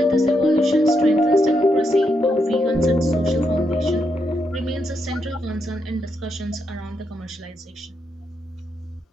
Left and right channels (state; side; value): normal; both; correlation 0.81